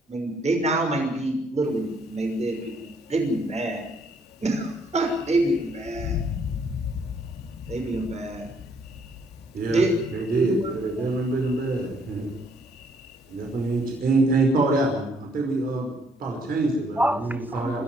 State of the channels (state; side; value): normal; both; correlation 0.67